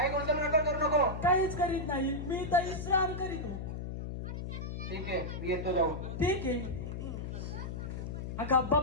गोंधळ नका करू नको. काहीच करीत नाही. मी तर विश्राम करीतो. ठीक आहे मी येतो जाऊन. ठीक आहे. अगं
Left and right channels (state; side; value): noise; left; hum, 6 dB below the sound